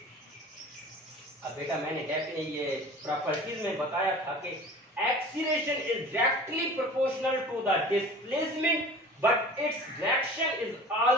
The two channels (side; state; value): both; normal; correlation 0.41